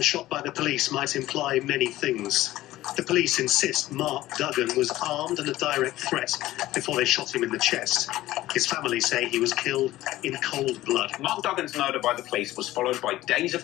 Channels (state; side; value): quieter; right; 15.8 dB